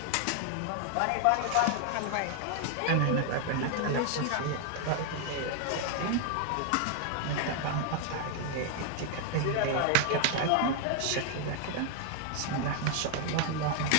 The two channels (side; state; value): both; different; correlation 0.00